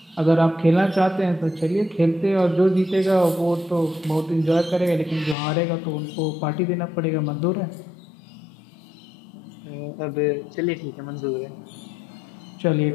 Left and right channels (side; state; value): right; drops out; at 5.4 s